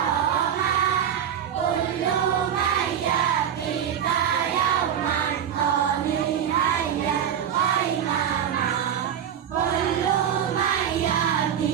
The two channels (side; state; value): left; quieter; 9.1 dB